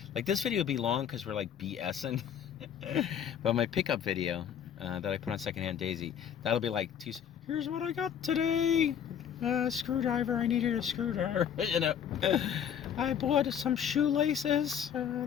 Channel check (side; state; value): right; quieter; 8.6 dB